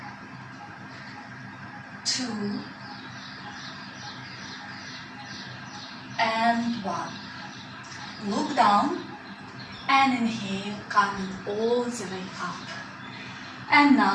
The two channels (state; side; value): identical; both; correlation 1.00